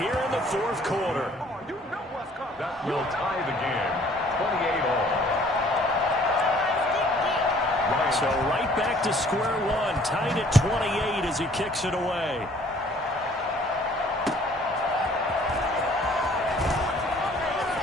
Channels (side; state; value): both; normal; correlation 0.57